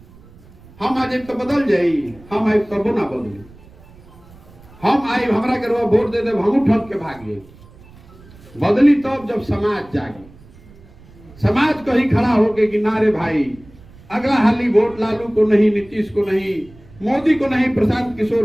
हम आज तो बदल जाई, हम आए तब ना बदली। हम आई हमरा के वोट दे दे, हम ठग के भागे। बदली तब जब समाज जागे, समाज कहीं खड़ा होके कि ना रे भाई अगला हाली वोट लालू को नहीं, नीतीश को नहीं, मोदी को नहीं, प्रशांत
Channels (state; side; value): noise; right; rumble, 23 dB below the sound